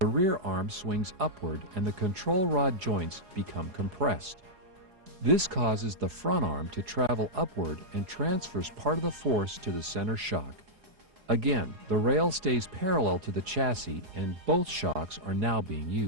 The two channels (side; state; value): left; late; 4.8 ms